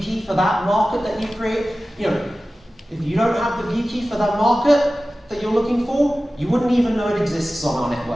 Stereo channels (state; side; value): normal; both; correlation 0.96